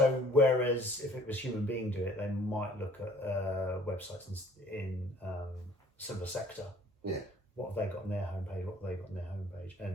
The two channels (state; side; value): normal; both; correlation 0.55